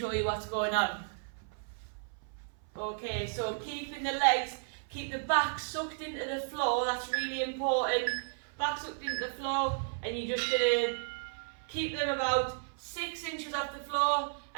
you what's going on. Okay, so keeping the legs, keep the back sucked into the floor, that's really important. Back sucked into the floor, and you're just going to keep them about 6 inches off the floor,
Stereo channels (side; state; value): left; silent; 55 dB below the other